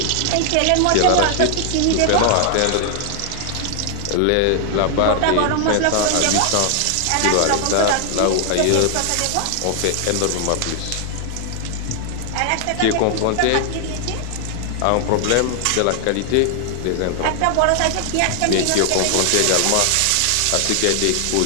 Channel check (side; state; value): both; different; correlation 0.00